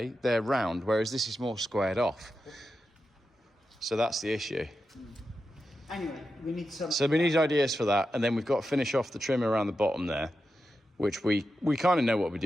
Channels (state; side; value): normal; both; correlation 0.89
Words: they're round, whereas this is more squared off. So that's the issue. Anyway, we need some... So we need ideas for that, and then we've got to finish off the trim around the bottom there, which we kind of know what we're